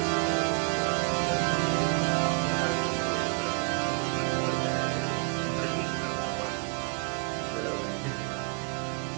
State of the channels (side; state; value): left; quieter; 33.7 dB